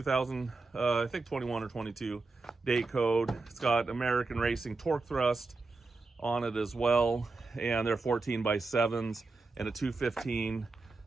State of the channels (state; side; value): quieter; left; 3.7 dB